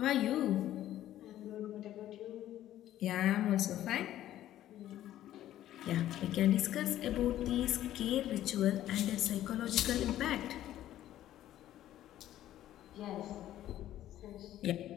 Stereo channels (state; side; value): quieter; right; 12.9 dB